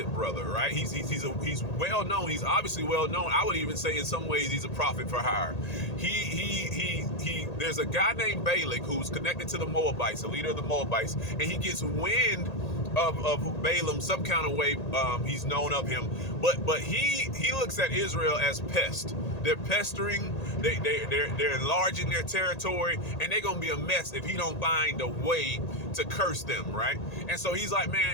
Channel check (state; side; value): late; right; 1.8 ms